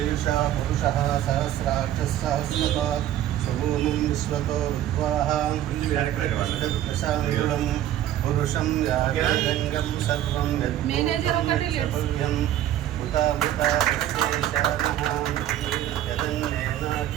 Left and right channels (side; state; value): left; quieter; 12.3 dB